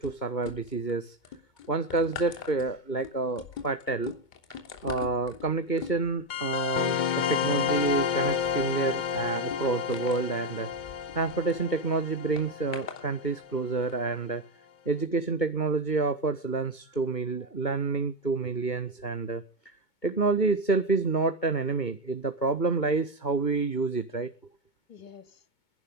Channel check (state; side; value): late; right; 2.2 ms